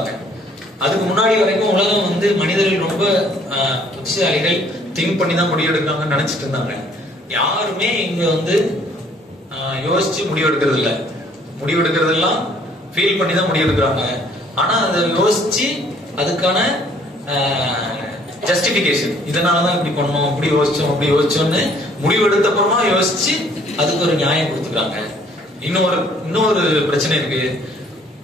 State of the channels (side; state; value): both; normal; correlation 0.60